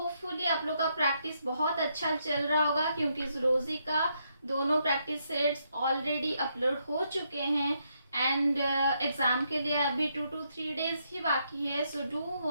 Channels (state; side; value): inverted; both; correlation -0.77